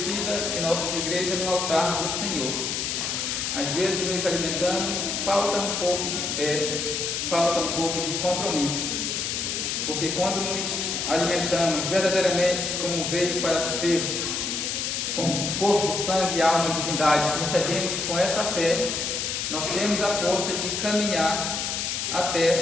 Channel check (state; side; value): noise; left; hiss, 1 dB below the sound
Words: em nossas igrejas no altar do Senhor. Às vezes nos alimentamos, falta um pouco de fé, falta um pouco de compromisso. Porque quando nos alimentamos verdadeiramente como veio para ser, com corpo, sangue, alma e divindade, que recebemos com essa fé, nós temos a força de caminhar